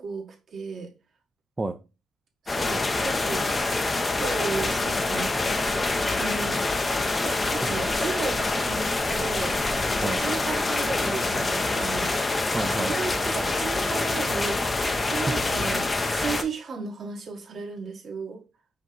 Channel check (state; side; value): normal; both; correlation 0.90